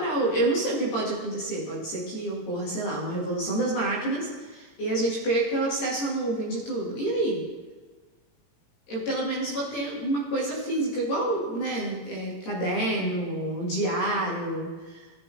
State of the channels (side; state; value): right; late; 17 ms